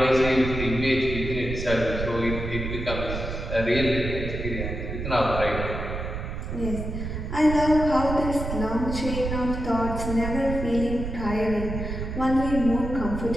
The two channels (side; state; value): right; noise; rumble, 5 dB below the sound